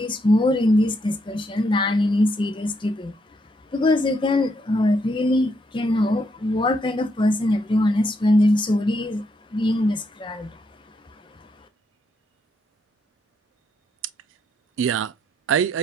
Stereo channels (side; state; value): both; normal; correlation 0.76